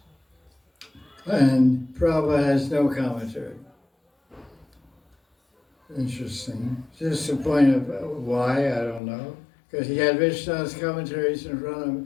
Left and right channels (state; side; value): drops out; right; at 9.0 s